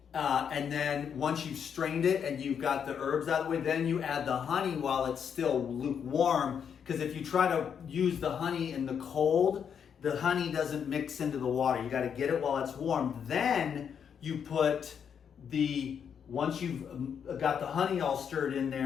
and then once you've strained it and you've got the herbs out of the way, then you add the honey while it's still lukewarm, because if you try to use the honey in the cold, the honey doesn't mix into the water. You got to get it while it's warm. Then you put once you've got the honey all stirred in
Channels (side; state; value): right; quieter; 7.6 dB